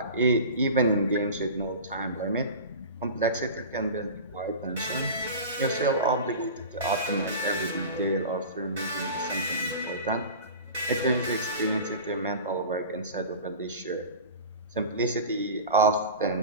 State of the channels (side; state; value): both; inverted; correlation -0.33